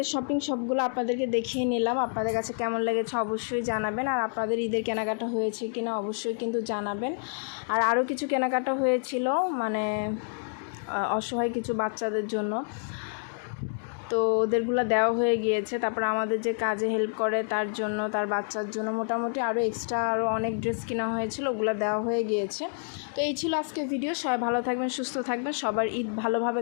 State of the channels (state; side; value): silent; right; 59 dB below the other